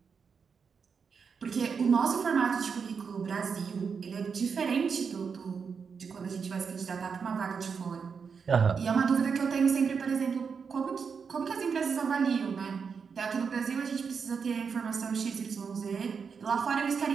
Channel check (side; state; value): left; quieter; 5.9 dB